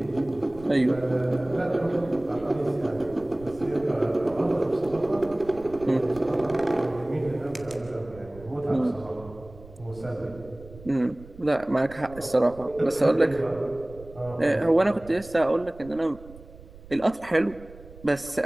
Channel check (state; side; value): noise; right; rumble, 19 dB below the sound